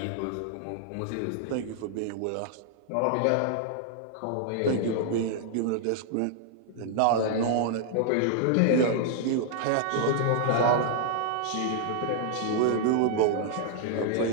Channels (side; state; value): both; different; correlation -0.01